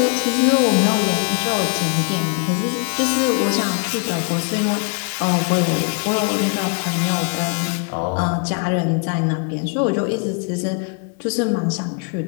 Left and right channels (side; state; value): right; quieter; 36.1 dB